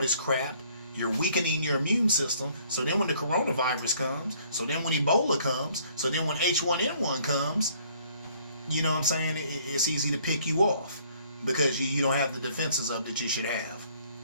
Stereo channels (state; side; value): inverted; both; correlation -0.60